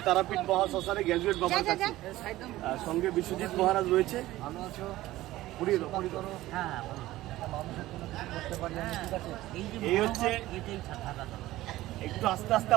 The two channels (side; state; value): left; quieter; 16.5 dB